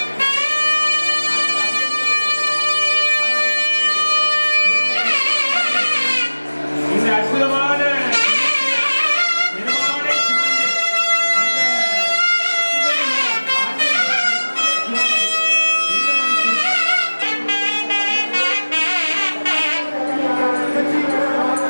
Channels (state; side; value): inverted; both; correlation -1.00